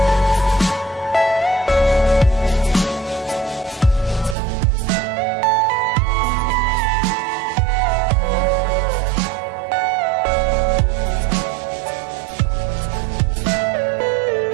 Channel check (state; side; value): drops out; left; at 4.4 s